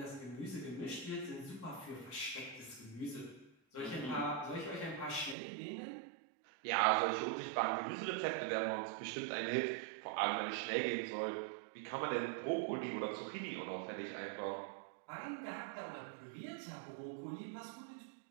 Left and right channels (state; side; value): drops out; left; at 5.4 s